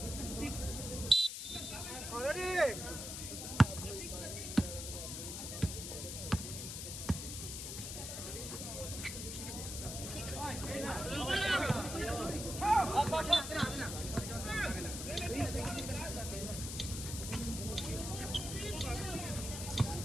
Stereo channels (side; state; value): left; noise; hiss, 6 dB below the sound